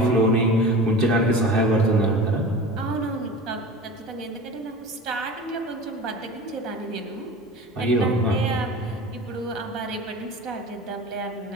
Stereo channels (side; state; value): both; normal; correlation 0.35